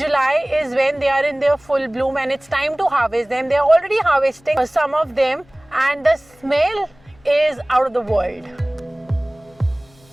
is when they are in their full bloom and it's time to harvest them. They are already harvesting some of them and the smell is out of the world.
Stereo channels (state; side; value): noise; left; hum, 29 dB below the sound